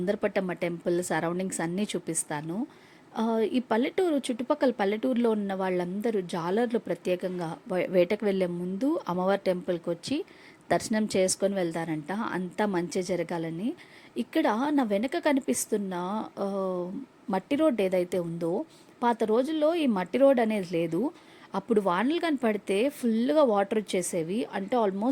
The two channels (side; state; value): both; identical; correlation 1.00